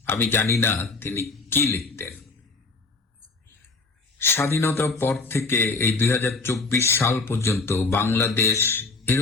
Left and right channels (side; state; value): right; quieter; 3.9 dB